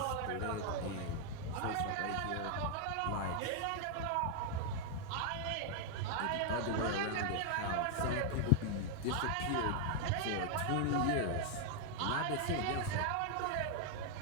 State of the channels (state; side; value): different; both; correlation 0.00